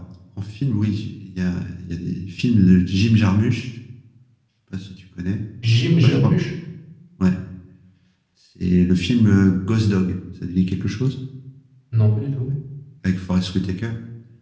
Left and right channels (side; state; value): both; identical; correlation 1.00